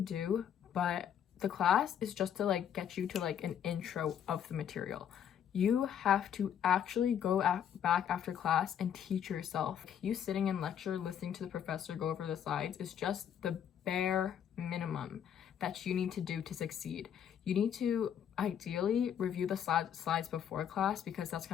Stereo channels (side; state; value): right; quieter; 9.1 dB